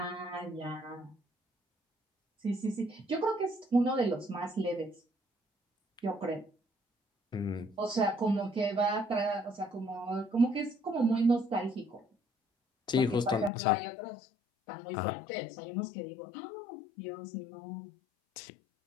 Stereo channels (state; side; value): drops out; right; at 13.5 s